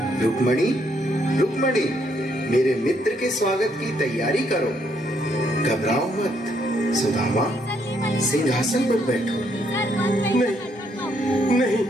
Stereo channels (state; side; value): normal; both; correlation 0.72